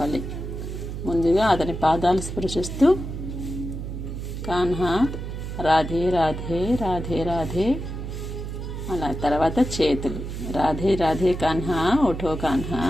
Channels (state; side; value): noise; right; hum, 6 dB below the sound